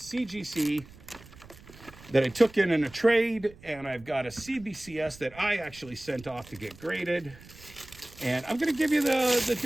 that I took in a trade, and I've got a cbcs that I actually sent off to get graded. And I'm going to give you the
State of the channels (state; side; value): noise; right; rumble, 21 dB below the sound